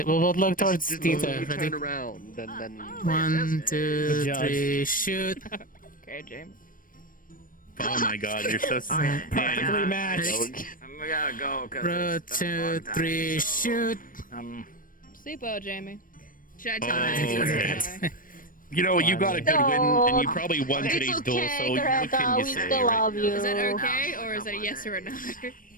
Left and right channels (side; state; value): right; late; 0.40 ms